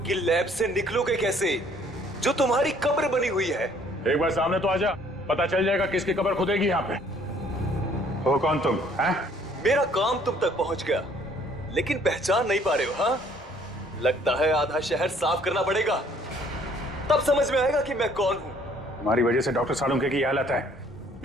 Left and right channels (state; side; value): normal; both; correlation 0.60